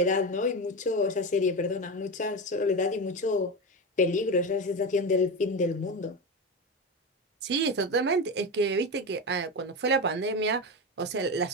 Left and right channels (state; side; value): normal; both; correlation 0.19